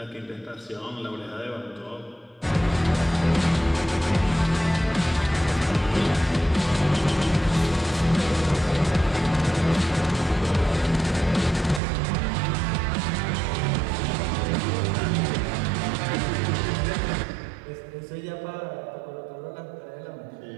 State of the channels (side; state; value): left; drops out; at 11.8 s